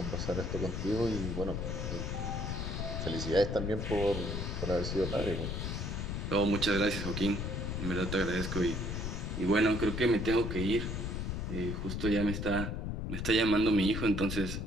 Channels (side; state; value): left; noise; rumble, 3 dB below the sound